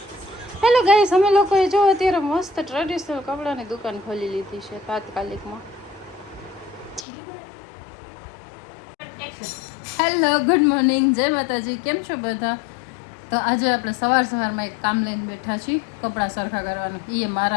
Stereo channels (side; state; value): right; drops out; at 7.1 s